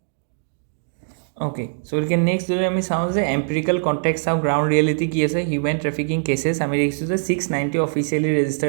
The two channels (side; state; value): left; silent; digital silence